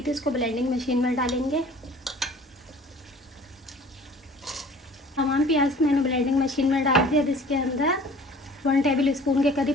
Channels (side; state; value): both; normal; correlation 0.48